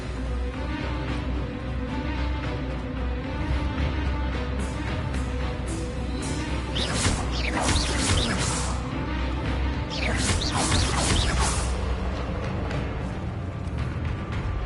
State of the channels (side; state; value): both; identical; correlation 1.00